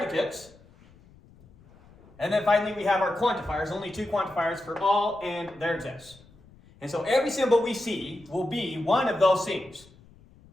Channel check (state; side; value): noise; left; rumble, 26 dB below the sound